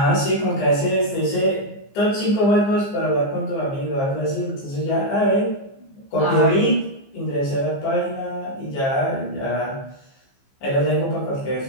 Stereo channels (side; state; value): right; late; 15 ms